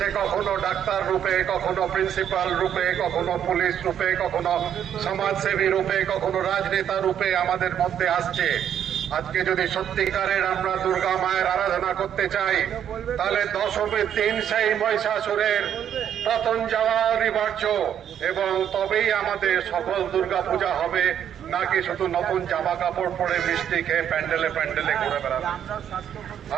কখনো ডাক্তার রূপে, কখনো প্রিন্সিপাল রূপে, কখনো পুলিশ রূপে, কখনো সমাজসেবী রূপে, কখনো রাজনেতা রূপে আমাদের মধ্যে আসছে। আজকে যদি সত্যিকারের আমরা দুর্গা মায়ের আরাধনা করতে চাই, তাহলে দশমীর দিন সেই মহিষাসুরের পতন যাওয়া অনিবার্য, এবং তবেই আমাদের সফল দুর্গা পূজা হবে, নাকি শুধু নতুন জামা কাপড় পরে মিষ্টি খেয়ে প্যান্ডেলে প্যান্ডেলে ঘুরে বেড়াবে।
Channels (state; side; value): quieter; left; 9.4 dB